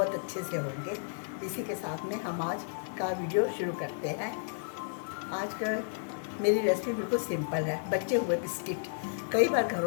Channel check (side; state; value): right; silent; digital silence